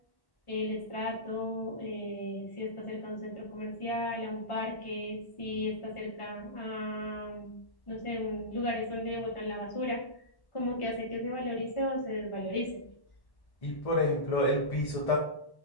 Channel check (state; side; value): late; right; 1.1 ms